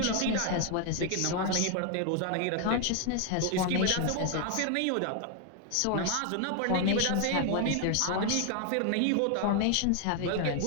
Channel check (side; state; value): both; different; correlation 0.00